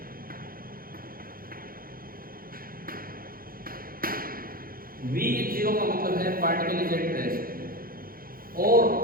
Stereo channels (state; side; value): late; left; 0.42 ms